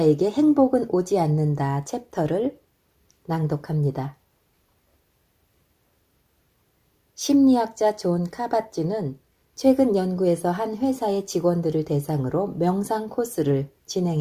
행복은 오지 않는다 챕터를 낭독합니다. 심리학자 존 카바찌는 최근 연구에서 한 회사의 직원들을 대상으로 명상 코스를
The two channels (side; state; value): both; identical; correlation 1.00